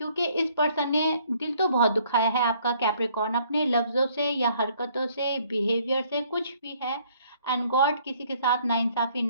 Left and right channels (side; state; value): both; inverted; correlation -0.62